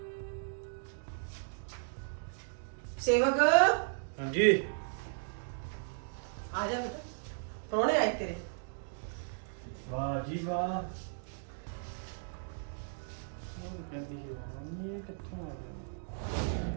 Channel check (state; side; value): silent; left; digital silence